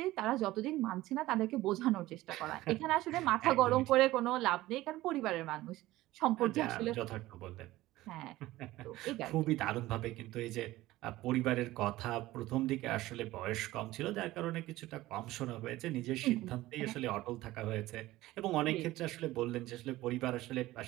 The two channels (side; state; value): left; quieter; 17.1 dB